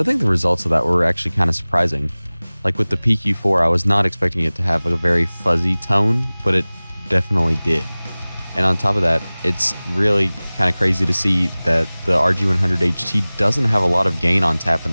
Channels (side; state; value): both; inverted; correlation -0.99